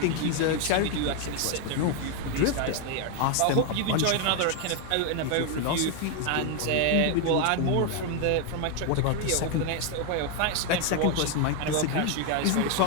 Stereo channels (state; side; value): different; both; correlation 0.01